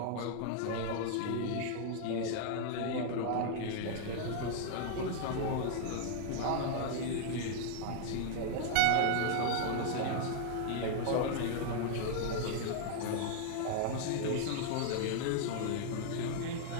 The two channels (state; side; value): different; both; correlation -0.01